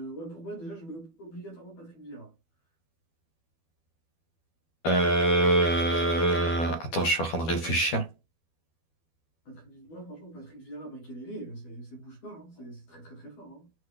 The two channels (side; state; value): right; late; 12 ms